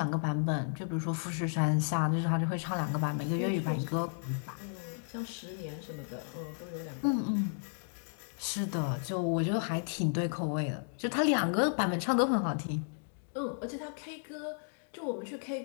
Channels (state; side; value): silent; right; digital silence